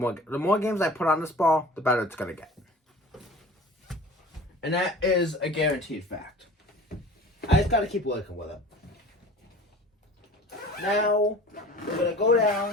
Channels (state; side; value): normal; both; correlation 0.42